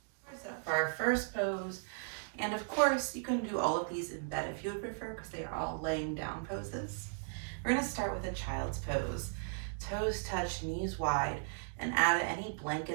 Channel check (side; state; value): left; silent; digital silence